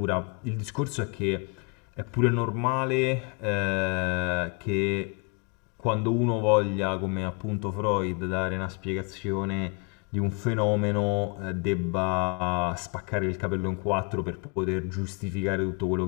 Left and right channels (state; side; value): quieter; right; 33.2 dB